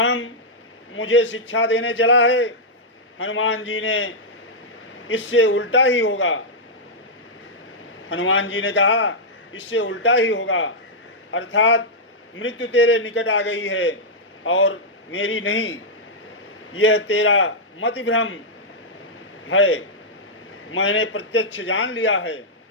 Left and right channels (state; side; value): normal; both; correlation -0.08